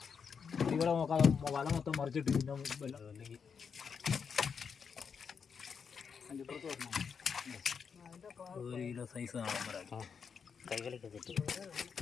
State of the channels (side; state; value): right; quieter; 6.3 dB